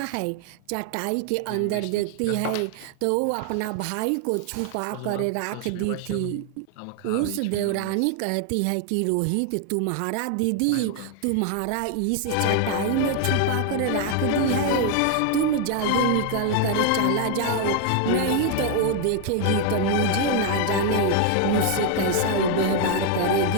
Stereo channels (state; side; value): different; both; correlation 0.00